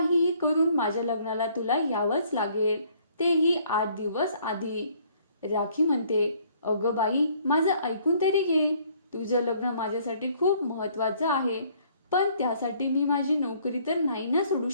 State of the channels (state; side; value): inverted; both; correlation -0.61